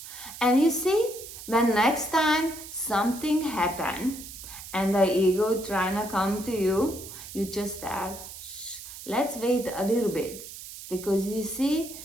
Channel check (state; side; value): noise; right; hiss, 13 dB below the sound